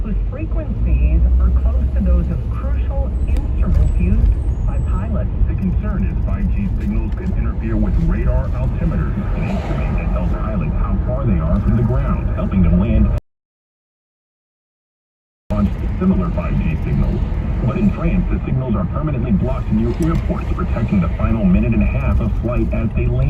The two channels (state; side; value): identical; both; correlation 1.00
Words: whose frequencies are close to those of crucial instruments used by pilots. The concern is 5G signals could interfere with radar altimeters, an instrument that tells pilots how far they are from the ground, helping them land on similar 5G signals. But in France, the signals are permanently blocked near airports, protecting the final minute and a half of flight as they